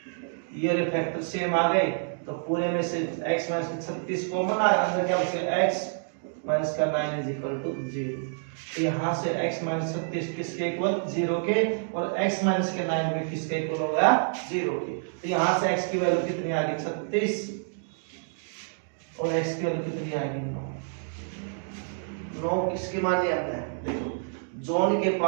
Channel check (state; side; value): silent; left; digital silence